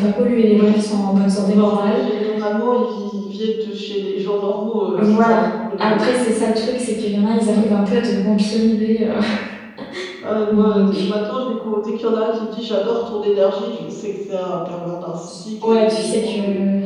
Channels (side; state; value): both; identical; correlation 1.00